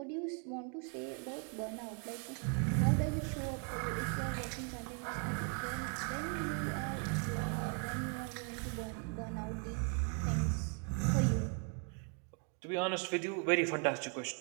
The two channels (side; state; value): left; quieter; 38.9 dB